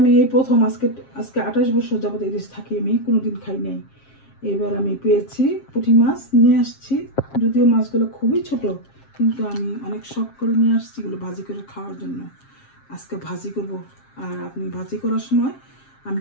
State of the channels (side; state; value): right; late; 7.5 ms